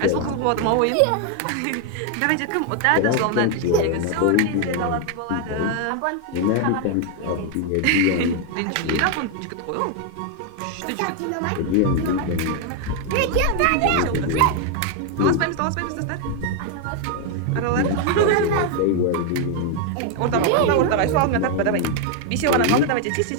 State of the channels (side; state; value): both; different; correlation 0.01